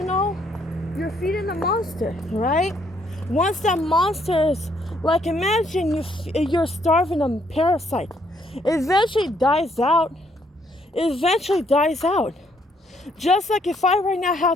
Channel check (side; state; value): both; normal; correlation 0.70